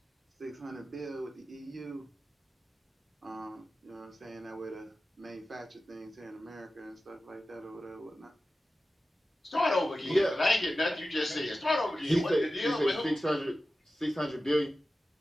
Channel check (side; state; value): both; normal; correlation 0.94